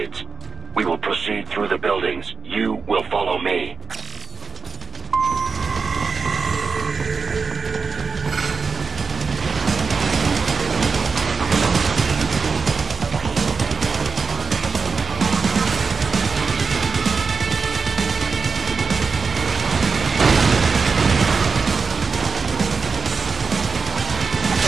We will proceed through the buildings. You will follow me.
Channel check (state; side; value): quieter; left; 4.8 dB